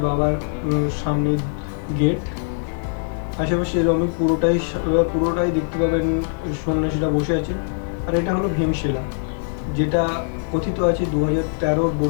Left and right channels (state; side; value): silent; right; digital silence